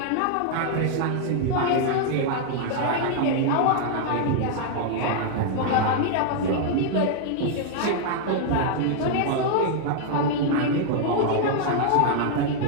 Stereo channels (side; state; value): both; different; correlation -0.01